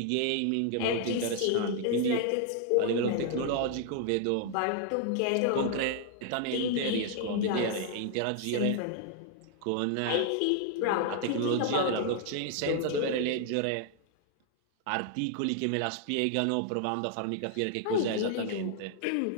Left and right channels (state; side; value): different; both; correlation 0.00